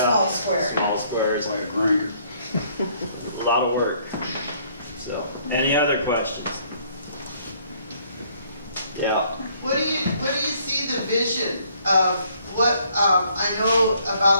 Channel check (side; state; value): both; inverted; correlation -0.64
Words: square. Small squares. By a grinder. A lot of work. So, any other questions? Yeah. What do you see the vision of what, I know